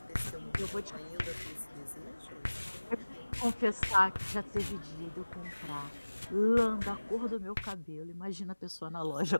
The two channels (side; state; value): both; inverted; correlation -1.00